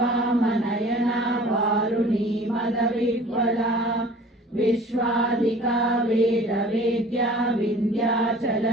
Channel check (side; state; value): both; normal; correlation 0.47